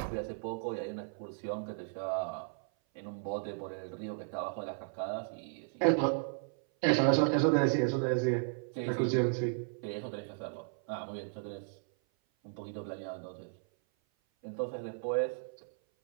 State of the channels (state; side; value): silent; left; 55 dB below the other